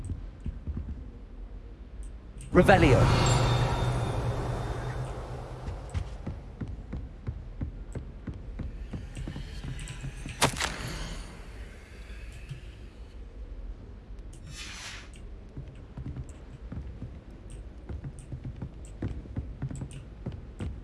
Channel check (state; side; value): identical; both; correlation 1.00